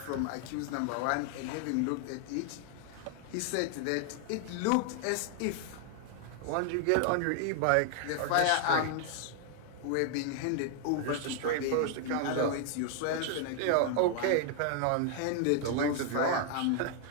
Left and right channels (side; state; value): both; different; correlation 0.00